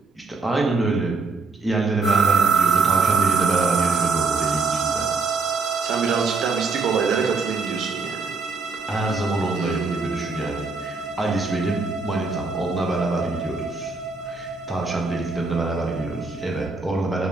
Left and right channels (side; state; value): left; quieter; 4.2 dB